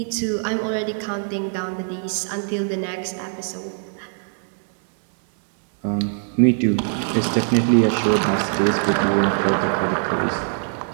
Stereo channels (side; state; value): left; silent; 63 dB below the other